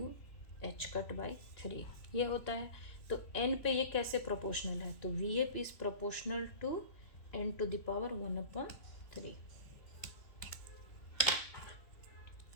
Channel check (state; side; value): late; right; 3.2 ms